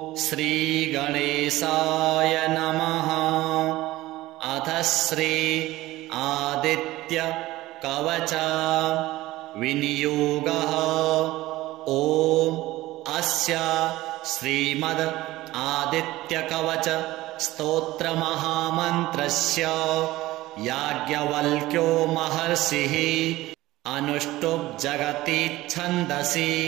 श्री गणेशाय नमः। अथ श्री आदित्य कवच विनियोगः। ॐ अस्य श्रीमद् आदित्य कवच स्तोत्र महामन्त्रस्य याज्ञवल्क्यो महर्षिः अनुष्टुप् जगति छन्दसि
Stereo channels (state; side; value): quieter; left; 17.4 dB